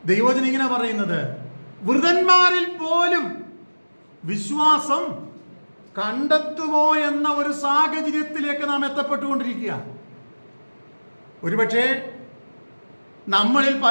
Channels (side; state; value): both; inverted; correlation -1.00